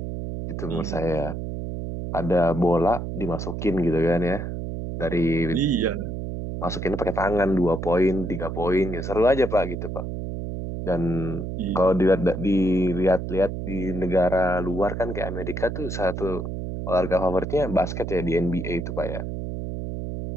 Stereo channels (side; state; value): right; noise; hum, 5 dB below the sound